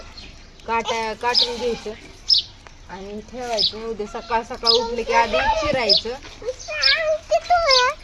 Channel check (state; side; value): identical; both; correlation 1.00